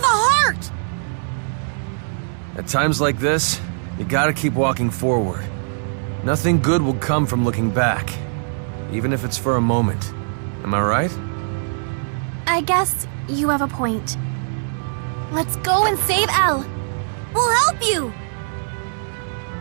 a heart! At times like this, you gotta keep walking forward. Nothing good will come from looking back, even if it's for a moment. Am I right? I guess you have a point. Let's go and save Elle. We'll help you!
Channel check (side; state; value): left; silent; digital silence